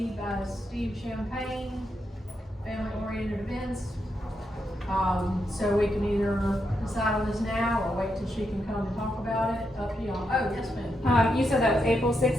by Steve Champagne, family-oriented events. So we can either decide on this now or wait till she can come and talk about it, up to y'all. Oh, yes ma'am. You said that was April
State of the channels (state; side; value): normal; both; correlation 0.83